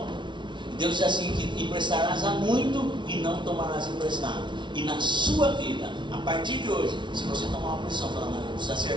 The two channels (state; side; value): late; left; 0.23 ms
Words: E Deus diz assim, que emprestarás a muito e não tomarás emprestado. E na sua vida, a partir de hoje, se você tomar uma posição falando, não, eu preciso